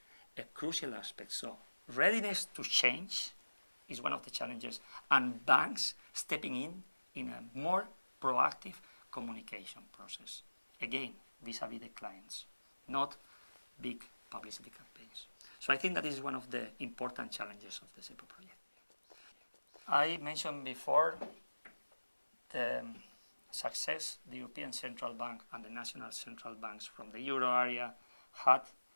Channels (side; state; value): both; inverted; correlation -1.00